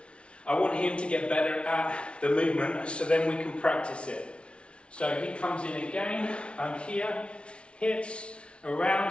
I want him to get better at the movement, so then we can practice it. So he comes in again, I'm here, hits,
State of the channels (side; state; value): right; late; 0.059 ms